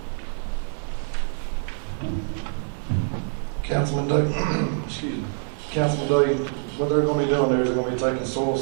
here. Councilman Day, excuse me, Councilman Day, what they're gonna be doing there is they're gonna be taking soil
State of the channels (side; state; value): left; silent; 62 dB below the other